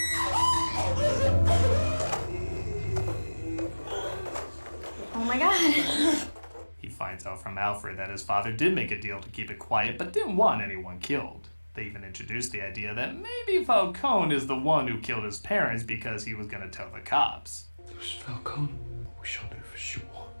Oh my god. He finds out from Alfred that his father did make a deal to keep it quiet, but didn't want anyone killed. They even introduced the idea that maybe Falcone is the one who killed his parents because he was going to tell the cops. It was Falcone? We shall know for sure.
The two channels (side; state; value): both; inverted; correlation -1.00